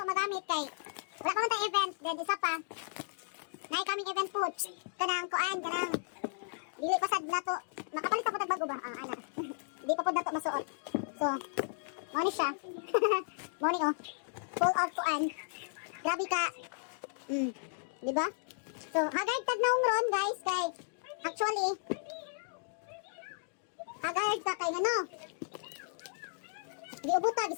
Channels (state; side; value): silent; right; digital silence